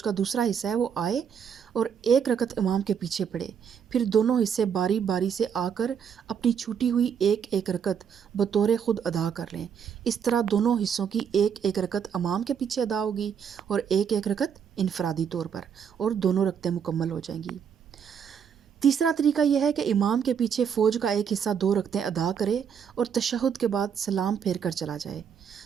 کا دوسرا حصہ ہے وہ آئے اور 1 رکعت امام کے پیچھے پڑھے، پھر دونوں حصے باری باری سے آ کر اپنی چھوٹی ہوئی ایک رکعت بطور خود ادا کر لیں۔ اس طرح دونوں حصوں کی ایک رکعت امام کے پیچھے ادا ہوگی اور ایک رکعت انفرادی طور پر، اور دونوں رکعتیں مکمل ہو جائیں گی۔ تیسرا طریقہ یہ ہے کہ امام کے پیچھے فوج کا ایک حصہ 2 رکعتیں ادا کرے اور تشہد کے بعد سلام پھیر کر چلا جائے،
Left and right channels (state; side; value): quieter; left; 7.5 dB